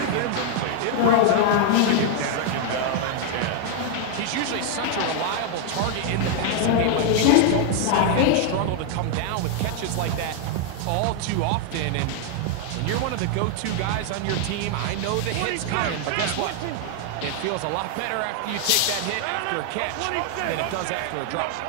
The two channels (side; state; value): both; different; correlation 0.00